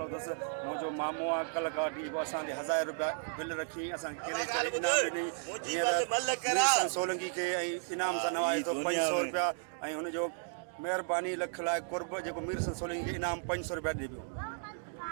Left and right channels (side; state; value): left; silent; digital silence